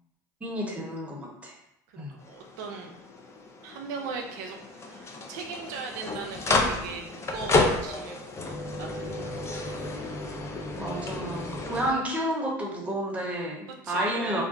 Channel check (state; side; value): normal; both; correlation 0.39